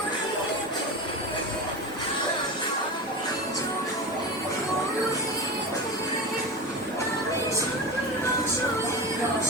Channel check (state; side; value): normal; both; correlation 0.25